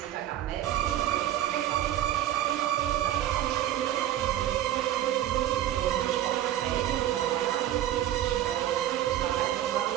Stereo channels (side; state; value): left; quieter; 12.5 dB